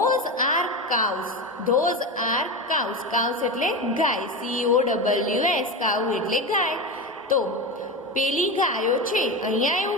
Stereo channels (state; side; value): normal; both; correlation 0.21